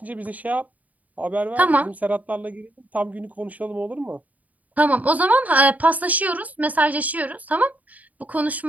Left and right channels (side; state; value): left; late; 0.074 ms